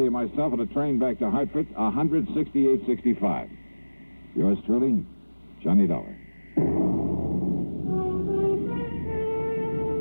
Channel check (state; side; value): inverted; both; correlation -1.00